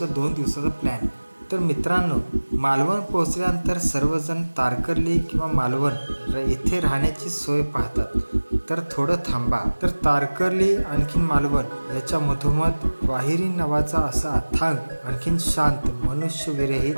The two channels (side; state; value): both; inverted; correlation -1.00